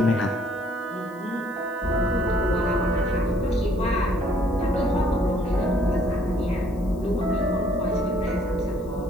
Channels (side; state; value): left; noise; hiss, 29 dB below the sound